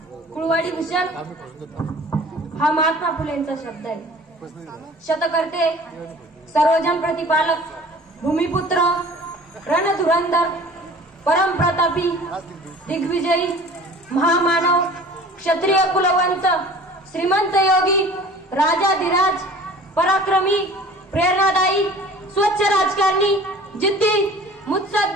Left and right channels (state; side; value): normal; both; correlation 0.46